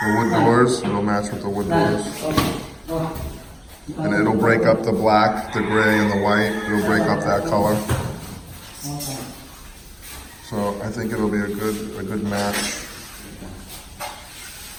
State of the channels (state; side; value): identical; both; correlation 1.00